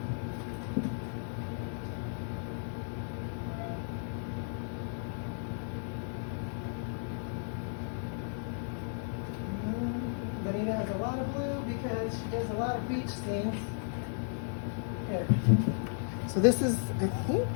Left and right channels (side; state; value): right; silent; digital silence